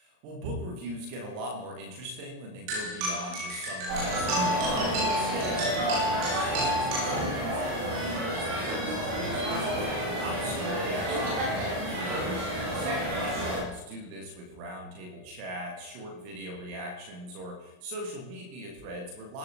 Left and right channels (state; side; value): late; left; 39 ms